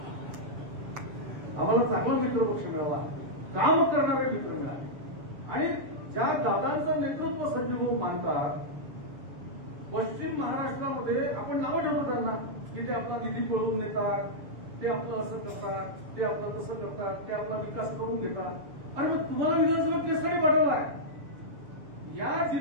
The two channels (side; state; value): left; late; 6.9 ms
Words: आम्हाला चांगला मित्रपक्ष मिळाला, काम करणारे मित्र मिळाले. आणि ज्या दादांचं नेतृत्व संजयभाऊ मानतात, पश्चिम महाराष्ट्रामध्ये आपण नावं ठेवतो त्यांना की ते आपला निधी पळवून नेतात, ते आपलं असं करतात, ते आपलं तसं करतात, ते आपला विकास करून देतात. आणि मग तुम्हाला विधानसभा केसरी पाठवला आहे. या